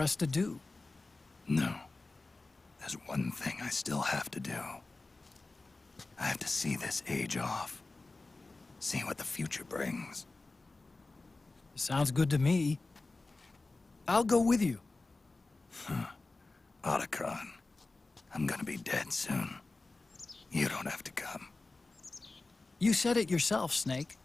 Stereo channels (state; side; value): quieter; right; 3.4 dB